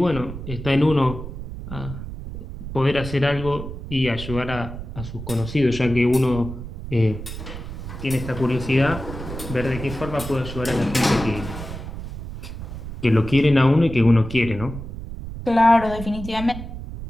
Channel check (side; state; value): right; noise; rumble, 9 dB below the sound